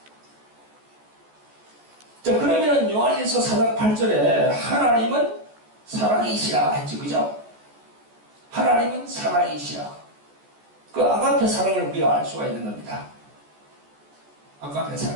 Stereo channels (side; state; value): left; late; 14 ms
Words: 자, 그러면 요한일서 4장 8절에 하나님은 사랑이시라 했죠, 그죠? 하나님은 사랑이시라. 그 아가페 사랑을 우리가 알 수가 있는 겁니다. 아가페